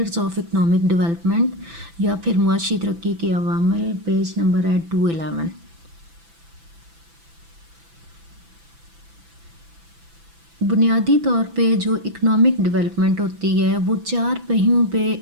آف اکنامک ڈیولپمنٹ یا پھر معاشی ترقی کے عوامل. پیج نمبر ہے 211. بنیادی طور پہ جو اکنامک ڈیولپمنٹ ہوتی ہے وہ 4 پہیوں پہ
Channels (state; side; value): late; left; 6.0 ms